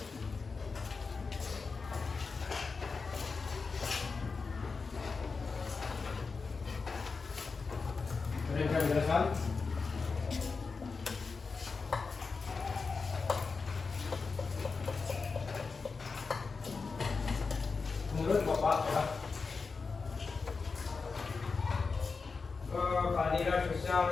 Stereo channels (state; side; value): quieter; right; 4.6 dB